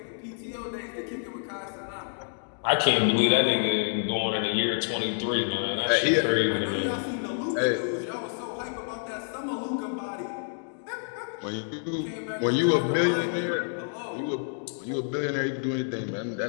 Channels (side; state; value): right; silent; digital silence